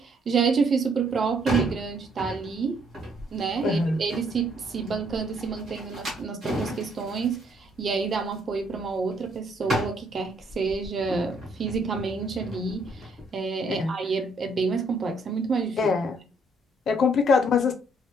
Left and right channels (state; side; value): normal; both; correlation 0.67